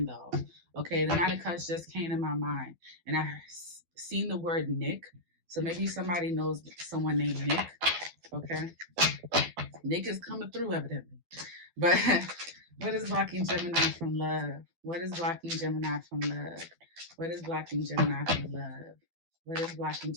though. Okay, the Knight of Cups just came to my mind. And I seen the word Nick. So maybe somebody knows someone named Nick. Okay. Nick is coming through, evidently. But what is blocking Gemini from love? What is blocking Gemini from love? What is blocking Gemini from love? What is blocking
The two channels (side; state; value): left; late; 12 ms